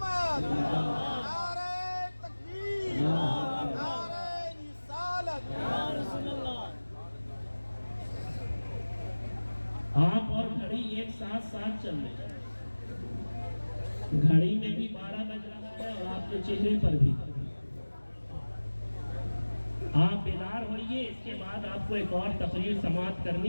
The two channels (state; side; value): inverted; both; correlation -1.00